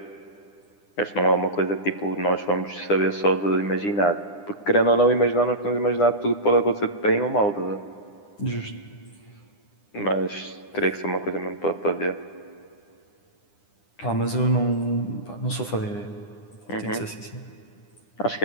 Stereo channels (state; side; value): late; right; 9.9 ms